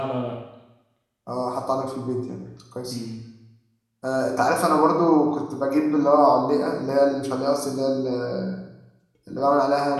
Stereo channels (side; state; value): both; identical; correlation 1.00